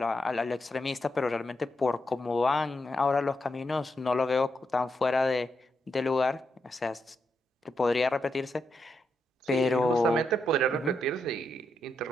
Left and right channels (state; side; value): normal; both; correlation 0.83